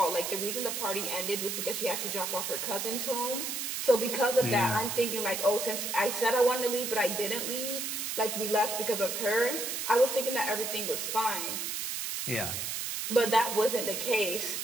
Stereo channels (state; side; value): noise; right; hiss, 3 dB below the sound